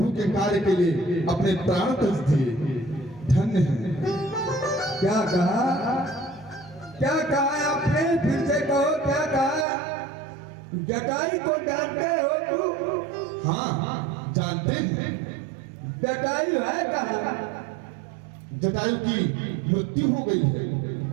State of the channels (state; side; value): drops out; left; at 9.7 s